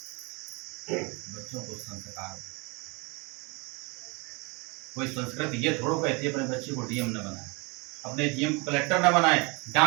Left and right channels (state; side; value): quieter; left; 29.0 dB